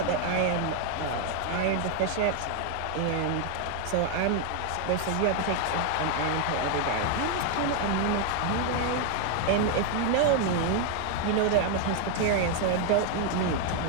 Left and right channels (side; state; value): both; different; correlation 0.00